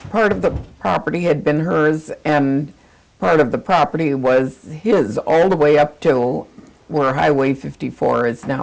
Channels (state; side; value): identical; both; correlation 1.00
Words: Part of the property had been hers, and part of the property was his, all the way up to where Highway 54 is